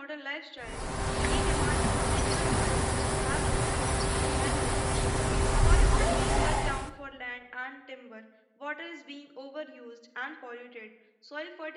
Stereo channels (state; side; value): identical; both; correlation 1.00